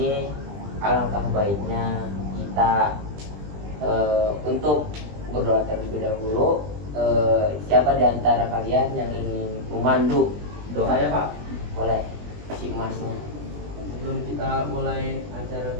alangkah baiknya kita untuk berdoa terlebih dahulu. Siapa di antara kalian yang ingin memandu doa? Saya Pak. Boleh, si emasnya. Sebelum kita mulai acara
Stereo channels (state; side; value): late; left; 20 ms